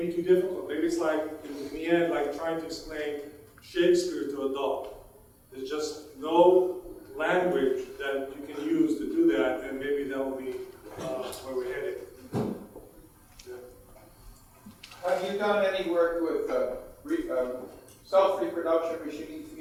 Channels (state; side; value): identical; both; correlation 1.00